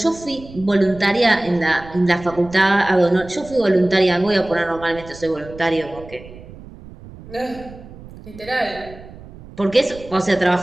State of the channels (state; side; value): noise; right; rumble, 18 dB below the sound